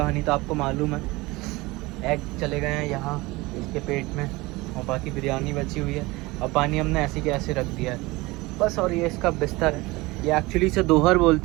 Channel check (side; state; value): left; quieter; 21.9 dB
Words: तो आपको मालूम है। एग चले गए हैं यहाँ इसके पेट में और बाकी बिरयानी बची हुई है और पानी हमने ऐसे के ऐसे रख दिया है बस। और ये इसका बिस्तर है, ये एक्चुअली इसे दोहर